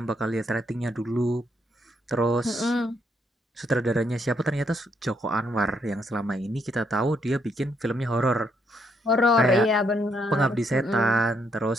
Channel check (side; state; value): both; normal; correlation 0.74